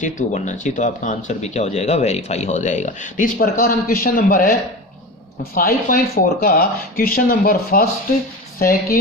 2 बनना चाहिए। तो आपका आंसर भी क्या हो जाएगा, वेरीफाई हो जाएगा। तो इस प्रकार हम क्वेश्चन नंबर है 5.4 का question number first,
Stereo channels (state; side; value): normal; both; correlation 0.29